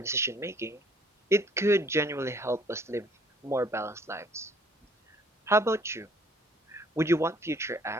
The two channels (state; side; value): normal; both; correlation 0.59